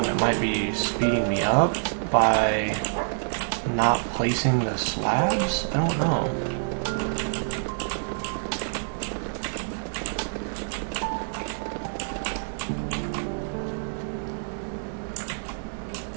it might be speeding me up by not placing the slabs? I don't know.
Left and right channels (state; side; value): silent; left; 60 dB below the other